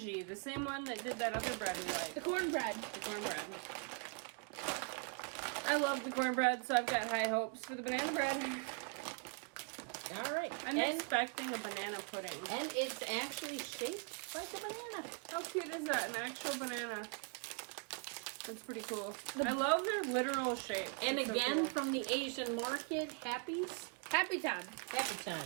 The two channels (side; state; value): left; quieter; 38.0 dB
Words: the same one that did that other bread we like. The cornbread. The cornbread. I love the cornbread, so I've got high hopes for the banana bread. All right. I'm expecting a banana pudding. And it's actually shaped like a banana. How cute is that? An actual banana. That's pretty cool. I love their literal shape. And It's so again, cool. from the Asian market, Happy's. Happy time. Happy